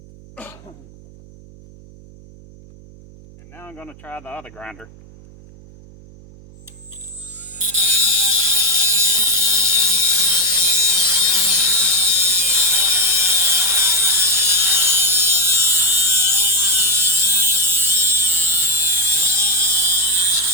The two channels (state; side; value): noise; right; hum, 22 dB below the sound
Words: And now I'm going to try the other grinder.